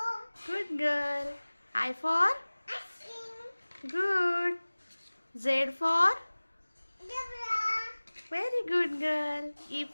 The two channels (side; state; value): both; inverted; correlation -1.00